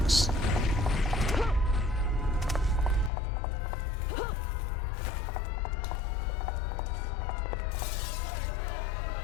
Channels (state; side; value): drops out; right; at 3.1 s